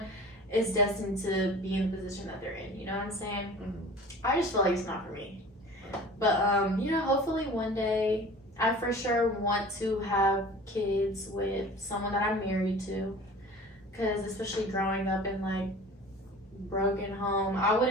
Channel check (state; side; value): normal; both; correlation 0.41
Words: is destined to be in the position that they're in, you know what I'm saying? Mm-hmm. I just feel like it's not for me. But, you know, hopefully one day I for sure want to have kids with someone that I'm married to, because especially growing up in like broken home, I